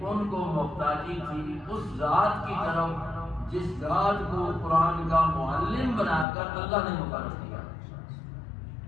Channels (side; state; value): right; drops out; at 6.2 s